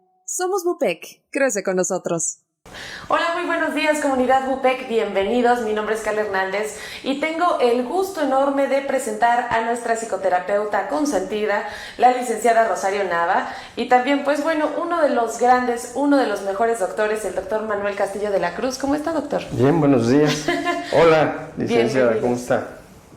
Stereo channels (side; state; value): both; identical; correlation 1.00